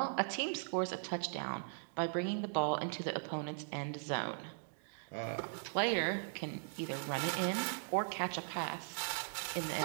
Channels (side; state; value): left; silent; digital silence